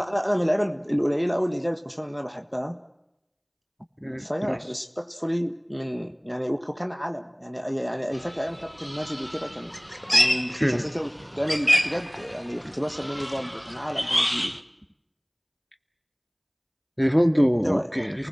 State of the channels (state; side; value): identical; both; correlation 1.00